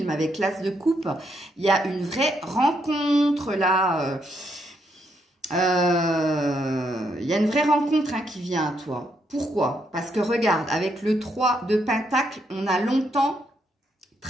avec l'as de coupe. Il y a une vraie rencontre là. Il y a une vraie rencontre hein, qui vient à toi. Pourquoi? Parce que regarde, avec le 3 de Pentacle, on a longtemps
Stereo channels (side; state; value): both; normal; correlation 0.76